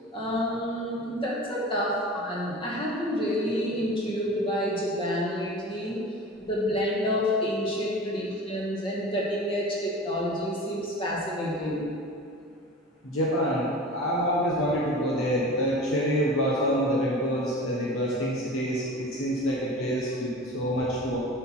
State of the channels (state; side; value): normal; both; correlation 0.37